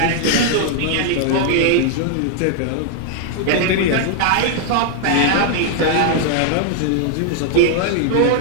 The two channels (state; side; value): different; both; correlation 0.00